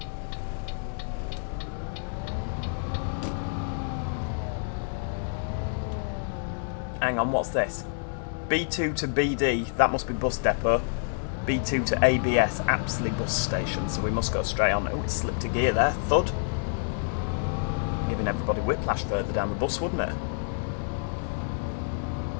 Hang on, what's this? B2 to BD, that must be bus depot. B2 to ABS, Apsley bus station, so we must go straight on. Oh, it slipped a gear there, thud. giving everybody whiplash further down the bus, wouldn't it?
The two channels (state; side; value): silent; right; digital silence